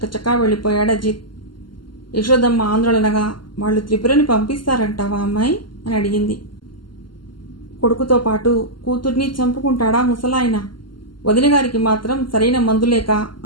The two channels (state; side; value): late; right; 0.72 ms